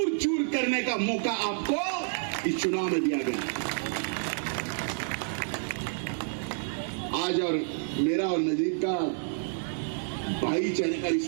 चूर करने का मौका आपको इस चुनाव में दिया गया। आज और मेरा और नजीब का भाईचारे का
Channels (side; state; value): left; silent; digital silence